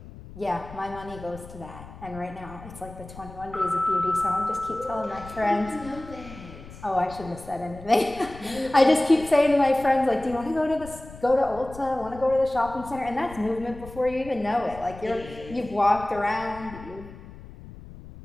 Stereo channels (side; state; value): left; noise; rumble, 16 dB below the sound